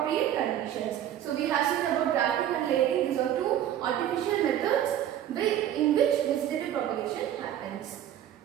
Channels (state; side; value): quieter; left; 11.2 dB